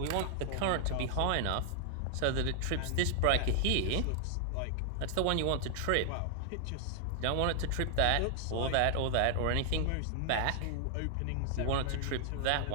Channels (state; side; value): different; both; correlation 0.00